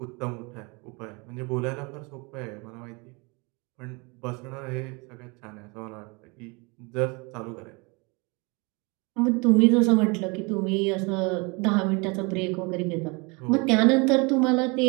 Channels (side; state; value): left; quieter; 29.0 dB